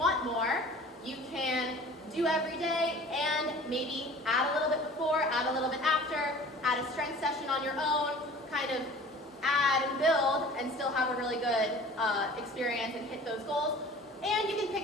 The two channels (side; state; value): both; normal; correlation 0.45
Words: more, you can do every day and maybe add a little bit before, add a little bit after, add a strength session on your own, kind of add and build and still have a really good experience and hit those goals. And you can pick